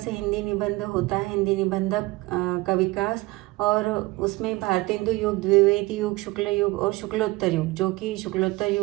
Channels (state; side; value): quieter; left; 21.4 dB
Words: हिंदी निबंध होता है, हिंदी निबंधक का विकास, और उसमें भारतेंदु युग, द्विवेदी युग, शुक्ल युग और शुक्लोत्तर युग, जो कि शुक्लोत्तर